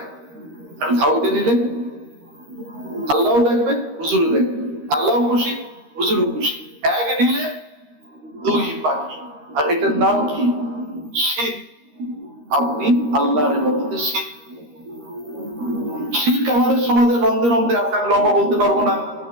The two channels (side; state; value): left; late; 13 ms